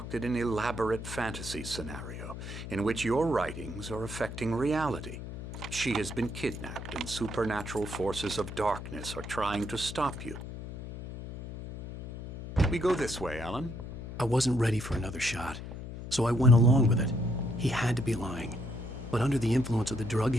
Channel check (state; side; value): noise; left; hum, 9 dB below the sound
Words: an elaborate fantasy scenario in which your writings are affecting reality. She has been kidnapped and supernatural forces of darkness are trying to stop you. We go this way, Alan. I wasn't ready for another shot, so I went along with it. He had to be lying. But under the influence of the drug